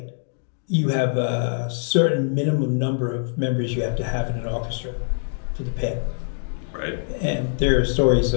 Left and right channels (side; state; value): right; silent; digital silence